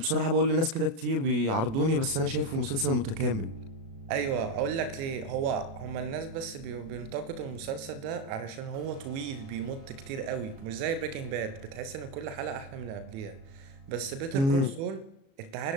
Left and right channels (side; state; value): left; late; 37 ms